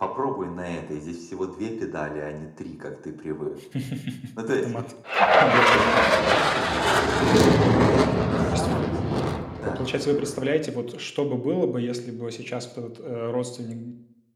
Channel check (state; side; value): identical; both; correlation 1.00